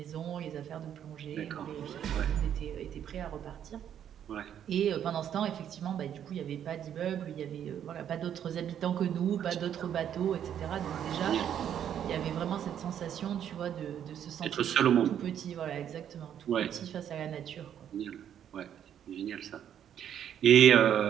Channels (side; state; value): left; quieter; 9.6 dB